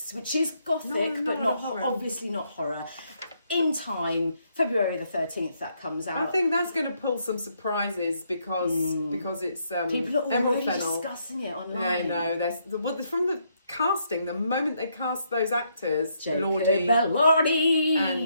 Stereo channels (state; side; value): inverted; both; correlation -0.75